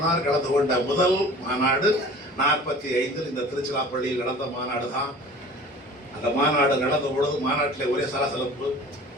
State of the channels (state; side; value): normal; both; correlation 0.44